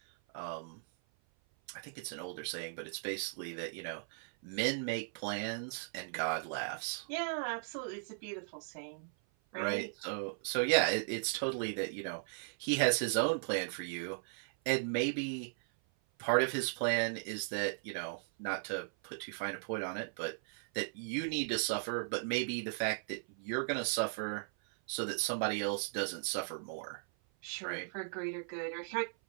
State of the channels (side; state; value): left; silent; 53 dB below the other